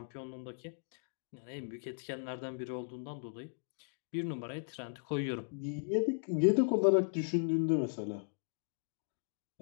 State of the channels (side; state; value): right; silent; digital silence